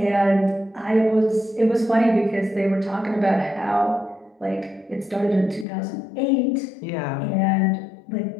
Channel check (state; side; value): drops out; right; at 5.7 s